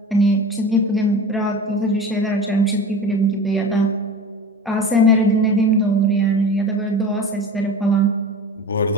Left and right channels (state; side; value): normal; both; correlation 0.34